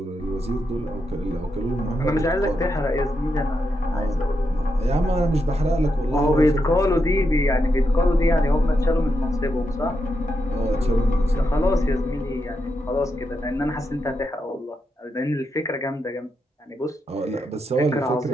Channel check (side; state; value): both; normal; correlation 0.84